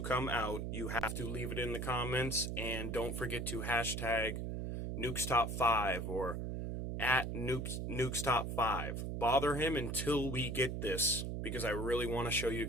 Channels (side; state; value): right; noise; hum, 3 dB below the sound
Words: come out, you have to leave it in the comments, and don't forget to hashtag Nuke's Top 5 or at Nuke's Top 5. Bother him until we get this, because I really want to show you